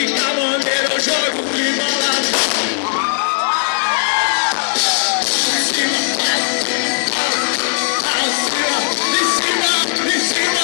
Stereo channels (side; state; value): right; silent; digital silence